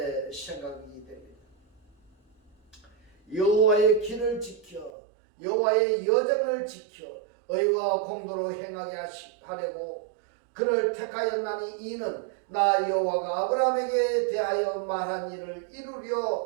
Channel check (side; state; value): left; drops out; at 4.9 s